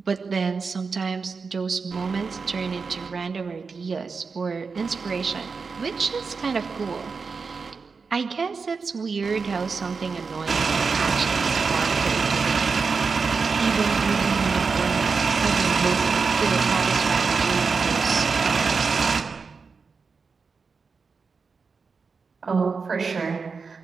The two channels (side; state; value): left; quieter; 4.9 dB